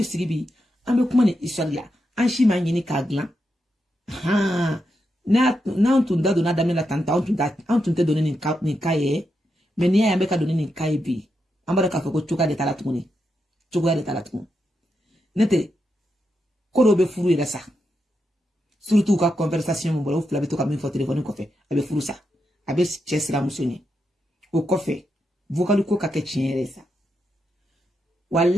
sigibi ambe kuma ni isalla an shi ma nyini ka glan ha na on da dona damela tanta on tun te donner ni kaye mais ni ya be ka donner ni kaye bi ambara ka ko chuka de talatuni nete ko be furu yere sa surtout ka conversation mo bolo fula be to ka min fo téléphone ko fe abe furu sa abe chesra musoni o ko fe vocal ko ka ke chiere sa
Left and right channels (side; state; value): both; normal; correlation 0.84